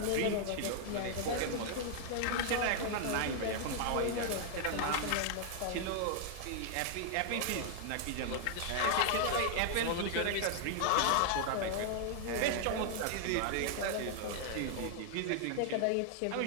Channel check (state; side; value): different; both; correlation 0.00